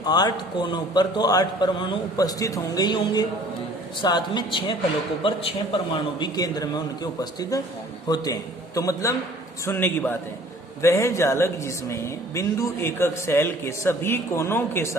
8 कोनों पर तो 8 परमाणु उपस्थित होंगे ही होंगे, साथ में 6 फलकों पर 6 परमाणु भी केंद्र में उनके उपस्थित होते हैं। तो मतलब सुनने की बात है, वह जालक जिसमें बिंदु एकक सेल के सभी कोनों के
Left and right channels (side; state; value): both; normal; correlation 0.52